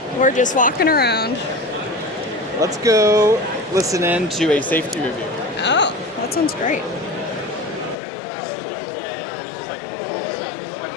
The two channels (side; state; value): right; drops out; at 8.0 s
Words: We're just walking around. Let's go listen in to a safety review. Oh, that sounds great.